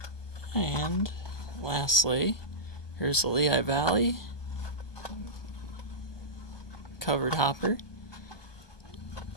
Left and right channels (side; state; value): right; late; 1.2 ms